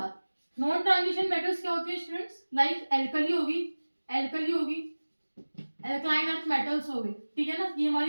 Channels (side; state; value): both; inverted; correlation -1.00